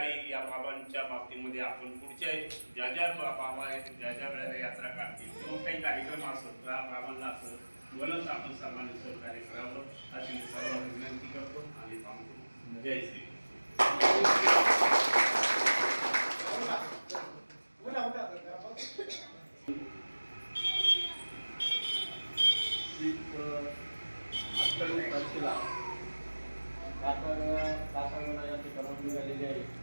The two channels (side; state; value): both; inverted; correlation -1.00